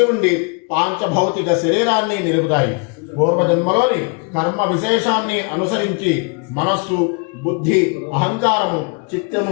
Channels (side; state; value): right; quieter; 32.7 dB